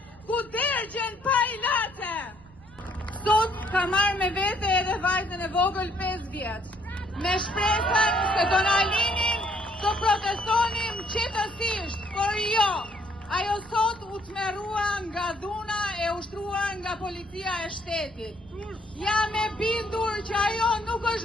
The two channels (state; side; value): noise; right; rumble, 24 dB below the sound